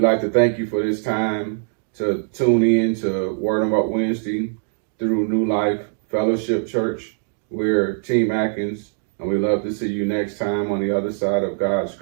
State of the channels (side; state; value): left; silent; digital silence